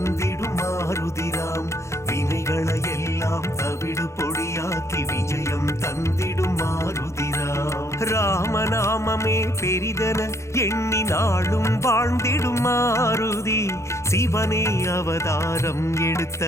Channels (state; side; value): late; right; 0.14 ms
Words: மாருதிராம். வினைகளை எல்லாம் தவிடு பொடியாக்கி விஜயம் தந்திடும் மாருதிராம். ராமநாமமே பெரிதன எண்ணி நாளும் வாழ்ந்திடும் மாருதி. சிவனே அவதாரம்